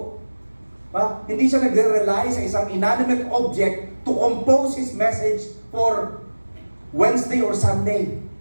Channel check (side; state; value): both; inverted; correlation -1.00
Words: Hindi siya nagre-rely sa isang inanimate object to compose his message for Wednesday or Sunday.